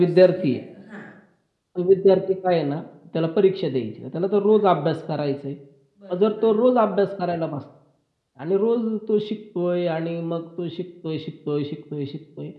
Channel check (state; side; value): identical; both; correlation 1.00